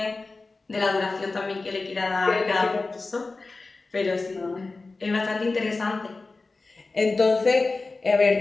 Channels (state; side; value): quieter; right; 3.6 dB